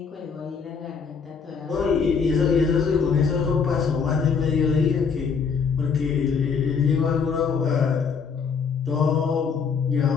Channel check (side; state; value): right; quieter; 5.8 dB